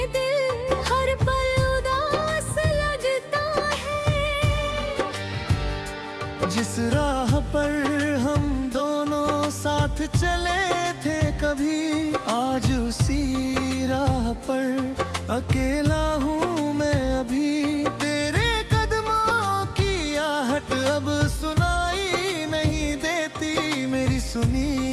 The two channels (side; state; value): both; identical; correlation 1.00